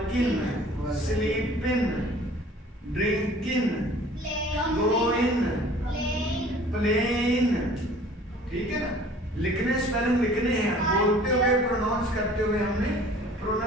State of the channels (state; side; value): normal; both; correlation 0.50